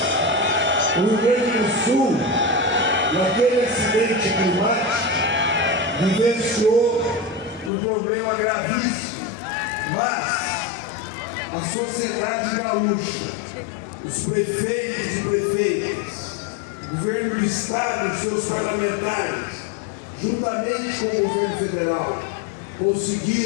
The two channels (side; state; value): right; drops out; at 7.7 s